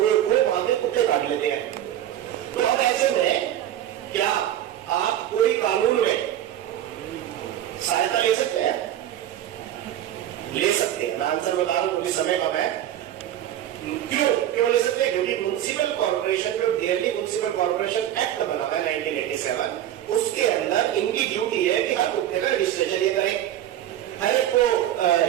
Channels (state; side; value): quieter; left; 11.9 dB